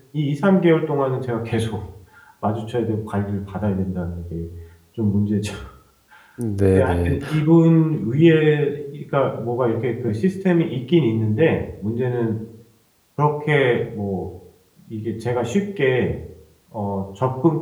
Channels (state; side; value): identical; both; correlation 1.00